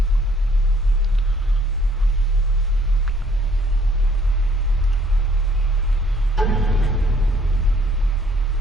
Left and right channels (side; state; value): both; normal; correlation 0.62